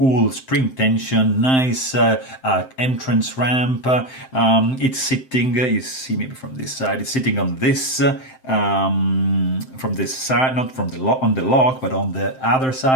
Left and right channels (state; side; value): late; right; 7.7 ms